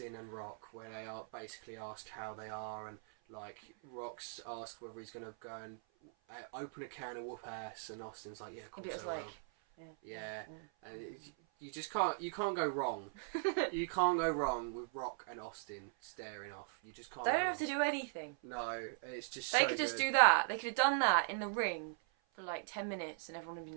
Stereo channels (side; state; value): left; silent; 51 dB below the other